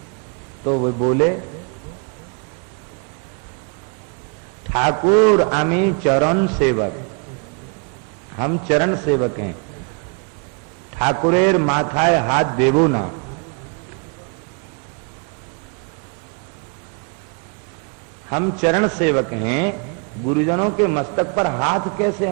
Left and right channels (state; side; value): quieter; left; 36.2 dB